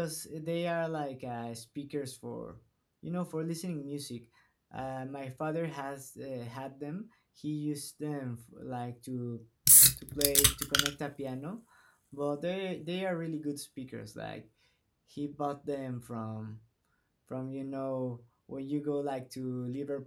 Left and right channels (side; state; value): both; identical; correlation 1.00